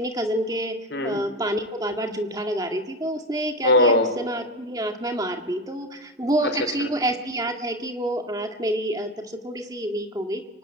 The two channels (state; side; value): normal; both; correlation 0.20